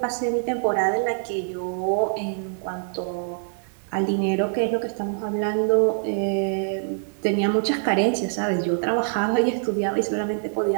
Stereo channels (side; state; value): left; silent; 62 dB below the other